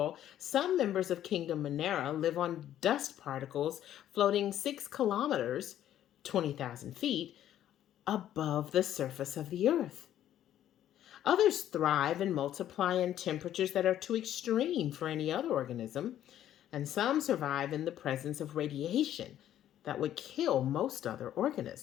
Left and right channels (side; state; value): right; quieter; 11.6 dB